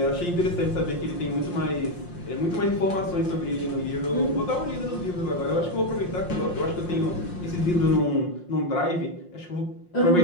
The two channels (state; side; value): late; right; 5.7 ms